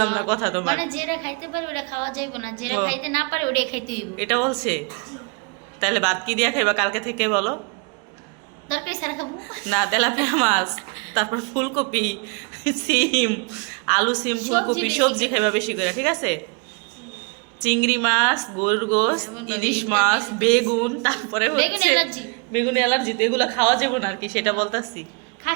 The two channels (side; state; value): left; quieter; 33.7 dB